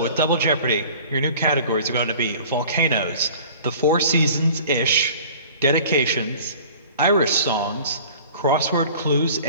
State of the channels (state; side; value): inverted; both; correlation -0.45